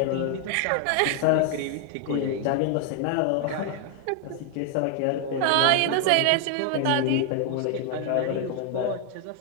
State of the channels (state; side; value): different; both; correlation 0.00